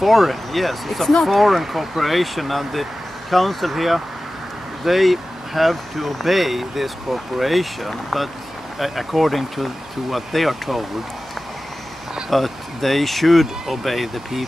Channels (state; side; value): normal; both; correlation 0.96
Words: yes. It's a foreign corporation, and the council here, they have to obey this corporation, but according to what they are told, but they should obey the